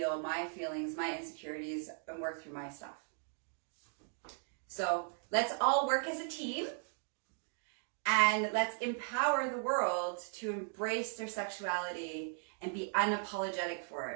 my feelings, my insecurities, and work through my stuff. So let's all work as a team, and let's empower the world to embrace their sexuality and be unapologetic for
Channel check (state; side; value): silent; left; 53 dB below the other